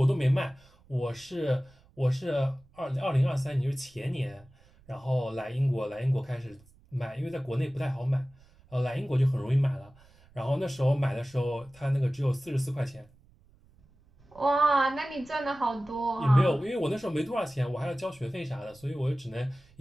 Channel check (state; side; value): noise; right; rumble, 28 dB below the sound